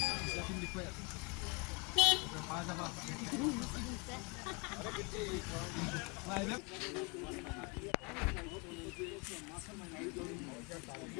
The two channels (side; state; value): right; quieter; 31.1 dB